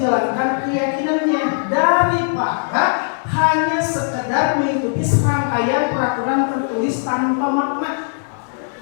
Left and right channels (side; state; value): right; silent; digital silence